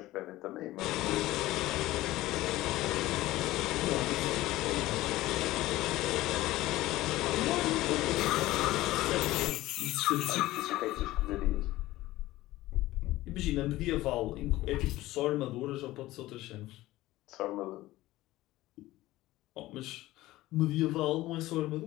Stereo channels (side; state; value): right; quieter; 17.0 dB